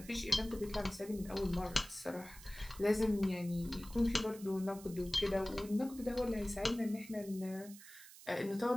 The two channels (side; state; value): right; noise; hiss, 17 dB below the sound